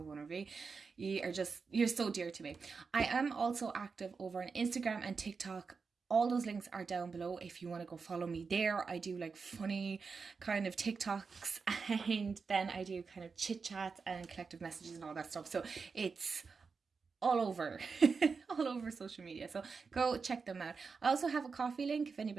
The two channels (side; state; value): left; quieter; 5.0 dB